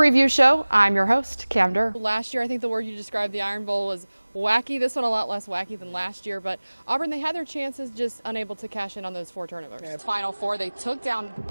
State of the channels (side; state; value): both; inverted; correlation -1.00